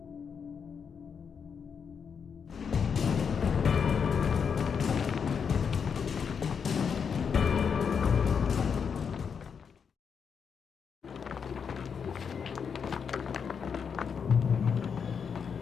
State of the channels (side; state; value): right; quieter; 6.6 dB